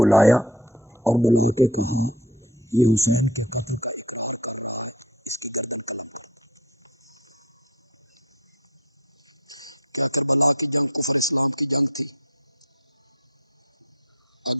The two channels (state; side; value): normal; both; correlation 0.36